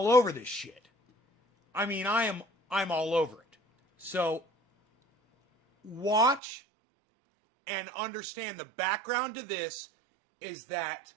over this shit. I mean, I'm all over it. So, watch and understand the background to this is that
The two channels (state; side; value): drops out; left; at 6.4 s